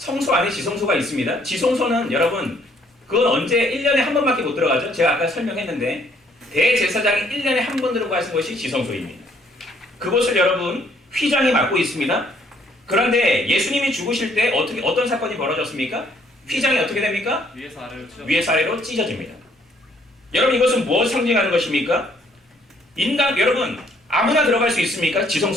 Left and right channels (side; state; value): both; normal; correlation 0.65